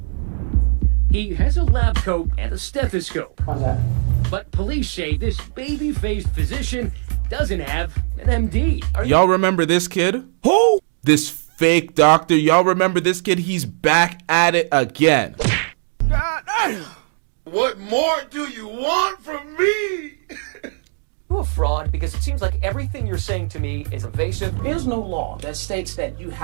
He has a lab coat and a stethoscope. How's that? But police say this baby-faced physician doesn't have an MD. Y'all remember this kid? Who? This fake doctor. Y'all remember this kid? He's back at it again. God damn. What more do you want from me? You a fraud because it seems like everything you're saying to me is evasive. There is no law that states that you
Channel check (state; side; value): silent; left; digital silence